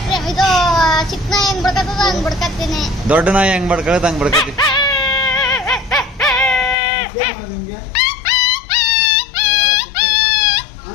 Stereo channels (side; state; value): right; drops out; at 6.8 s